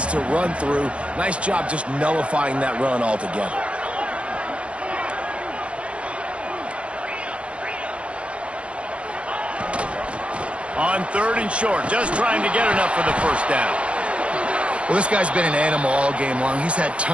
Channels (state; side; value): late; left; 0.060 ms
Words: to run through. Nice job just nullifying that run altogether. On 3rd and short, just trying to get enough for the 1st down. Well, this guy's been an animal all game long. He's had